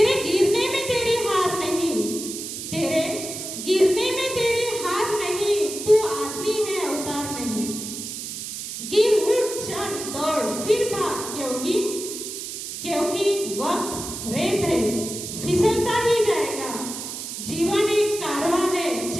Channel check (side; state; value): right; noise; hiss, 7 dB below the sound